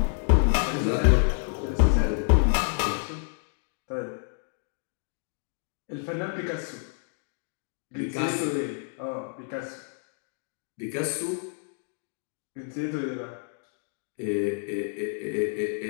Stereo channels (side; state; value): right; silent; 59 dB below the other